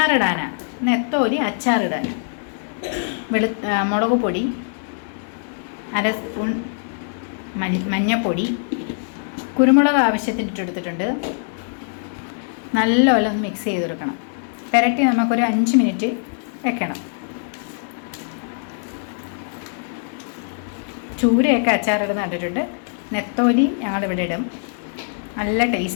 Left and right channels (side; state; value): right; silent; 60 dB below the other